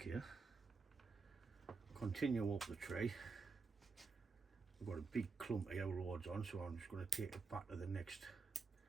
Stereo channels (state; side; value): quieter; left; 4.6 dB